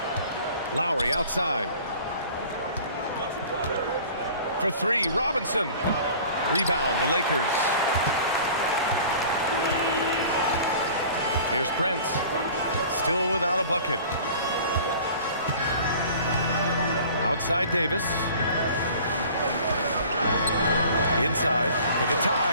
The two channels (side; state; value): both; inverted; correlation -0.46